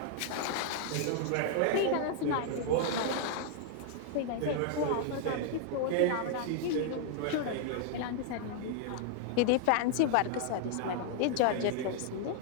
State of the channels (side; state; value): both; different; correlation -0.01